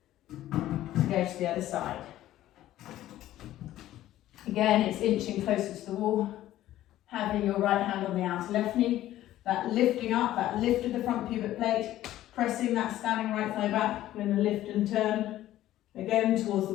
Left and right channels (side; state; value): right; quieter; 13.9 dB